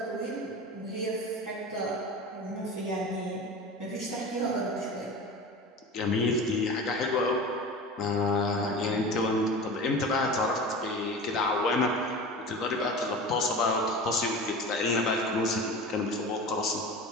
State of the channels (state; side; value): normal; both; correlation 0.32